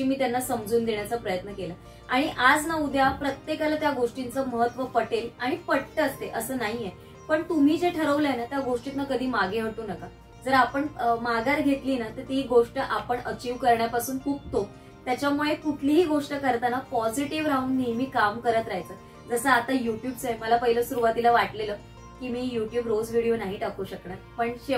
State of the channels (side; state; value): both; identical; correlation 1.00